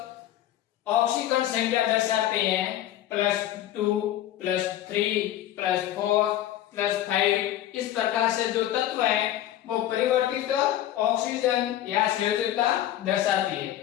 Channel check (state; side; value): quieter; right; 12.7 dB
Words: ऑक्सीकरण संख्या दर्शाते हैं +2, +3, +4, +5। इस प्रकार से जो तत्व है वो परिवर्तित ऑक्सीजन या संयोजकता दर्शाती है।